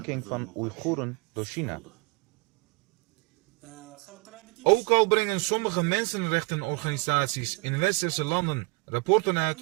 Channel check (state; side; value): quieter; left; 27.3 dB